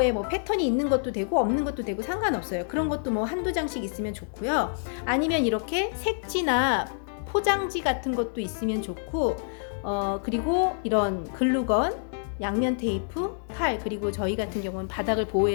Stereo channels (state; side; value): silent; right; digital silence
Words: 뭐 패턴이 있는 것도 되고 없는 것도 되고 상관없어요. 그런 것도 뭐 한두 장씩 있으면 좋고요. 아니면 이렇게 색지나 포장지 같은 것도 있으면 좋고, 그리고 이런 글루건, 양면 테이프, 칼, 그리고 저희 같은 경우는 바닥을